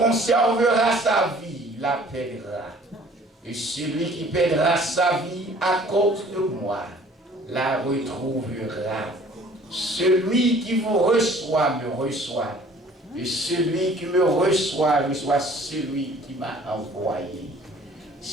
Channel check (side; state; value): both; normal; correlation 0.53